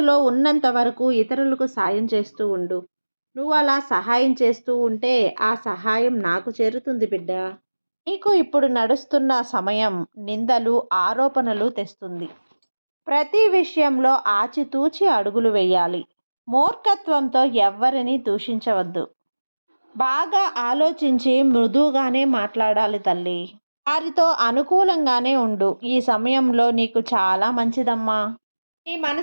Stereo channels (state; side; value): inverted; both; correlation -1.00